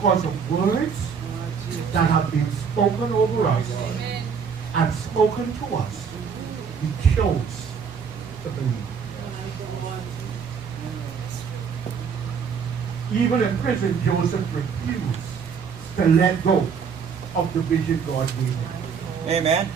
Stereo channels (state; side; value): quieter; left; 6.4 dB